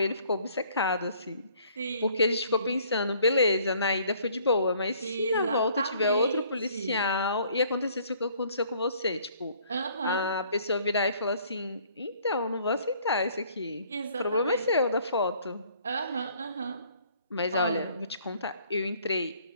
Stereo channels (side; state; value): both; inverted; correlation -0.59